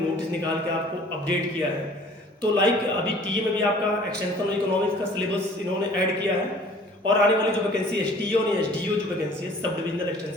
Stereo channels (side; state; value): both; normal; correlation 0.51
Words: नोटिस निकाल के आपको अपडेट किया है। तो अभी टीए में भी आपका एक्सटेंशन इकोनॉमिक्स का सिलेबस इन्होंने ऐड किया है और आने वाली जो वैकेंसी एसटीओ और एसडीओ जो वैकेंसी है सब डिविजनल